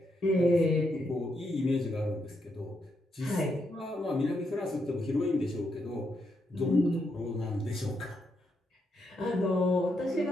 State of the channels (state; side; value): normal; both; correlation 0.80